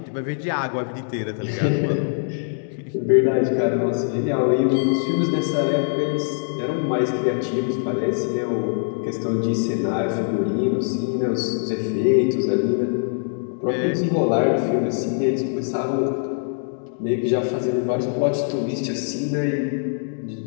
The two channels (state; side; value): silent; right; digital silence